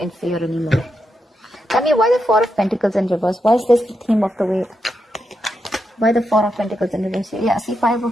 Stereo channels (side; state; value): both; normal; correlation 0.85